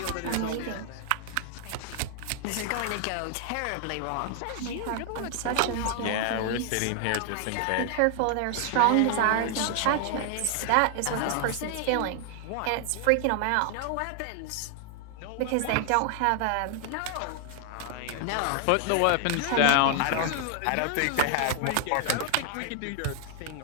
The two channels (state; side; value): different; both; correlation 0.00